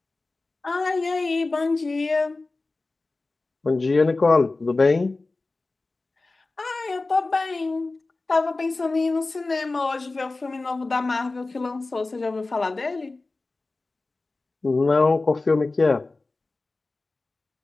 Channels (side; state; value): right; quieter; 3.4 dB